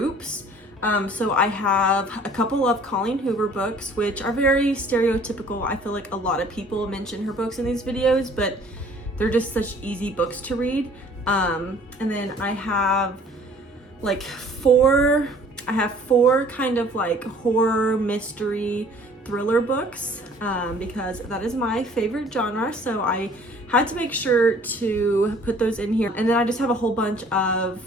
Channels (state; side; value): normal; both; correlation 0.53